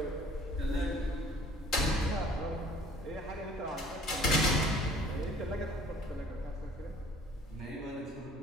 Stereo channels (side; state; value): both; normal; correlation 0.53